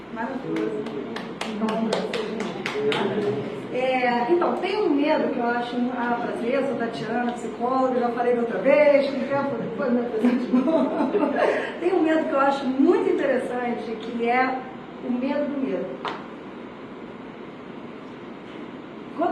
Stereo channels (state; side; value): identical; both; correlation 1.00